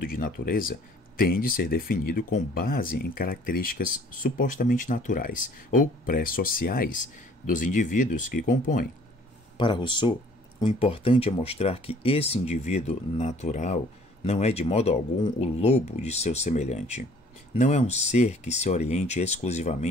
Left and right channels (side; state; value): both; normal; correlation 0.55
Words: de natureza tem de ser definido com base em características supostamente naturais ou pré-sociais dos indivíduos que compõem. Para Rousseau, o importante é mostrar que esse indivíduo natural não é de modo algum o lobo de seu semelhante. Não é um ser que se oriente